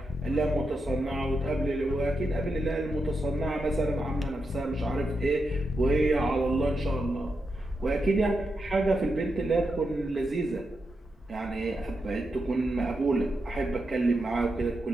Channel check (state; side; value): normal; both; correlation 0.86